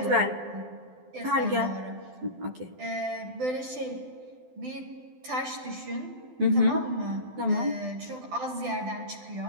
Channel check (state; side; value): late; left; 12 ms